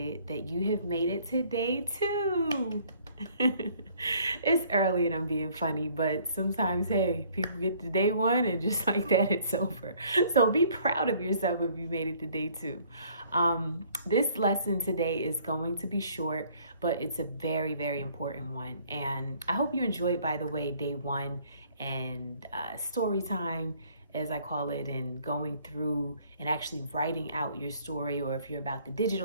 that you have made it to day 2. It's early and I'm being funny, but sometimes, hey, people get to day 1 and just like that, it's over. So be proud of yourself if you made it to day 2. This lesson today is going to be short, but it's a very, very important one. And I hope you enjoyed, by the way, day 1 and story time, as I call it, and going through and actually writing out your story, or if you're about the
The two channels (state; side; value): inverted; both; correlation -0.59